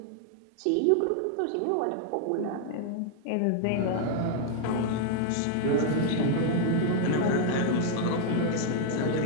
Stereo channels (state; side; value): different; both; correlation 0.00